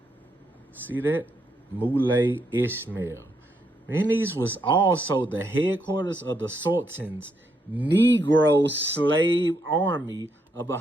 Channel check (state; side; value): normal; both; correlation 0.77